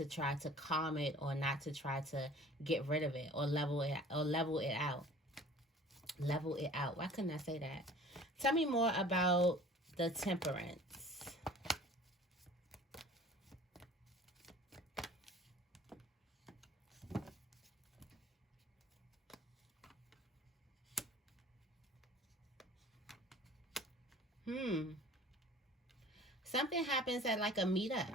try to calm it, or not to try to get rid of it, or level it out. Level it out. Why couldn't I say that? Tell me more about the Temperance. Something happens at like a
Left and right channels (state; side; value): normal; both; correlation 0.47